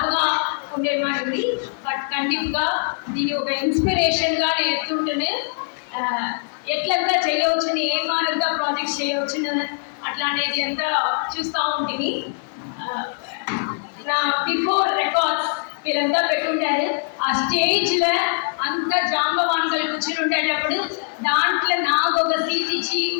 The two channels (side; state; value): right; silent; digital silence